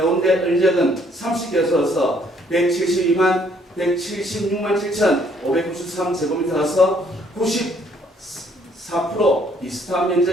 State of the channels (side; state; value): both; normal; correlation 0.65